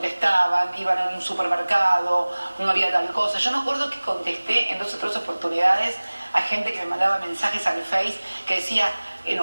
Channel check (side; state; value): both; inverted; correlation -1.00